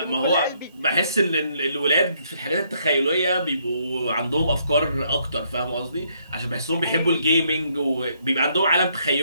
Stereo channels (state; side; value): inverted; both; correlation -0.71